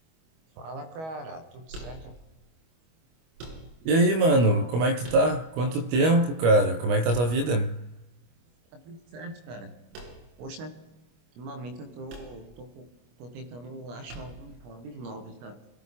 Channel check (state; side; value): late; left; 25 ms